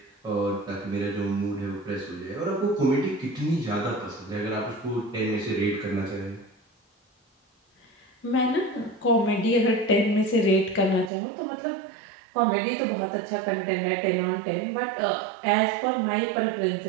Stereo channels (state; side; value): drops out; left; at 11.1 s